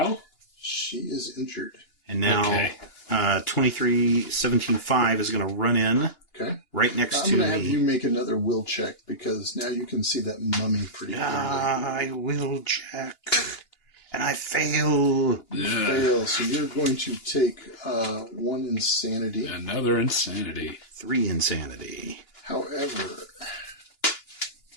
She is injured. And now Okay. 23, 17, 5 is going to run in Okay. right next I'm to going to have me. you make another will check because now you can see that mummy pretty clearly. I will check. And I fail. You fail, so you're going to take 1 insanity. Another insanity. 3 insanity. However,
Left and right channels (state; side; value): late; right; 2.9 ms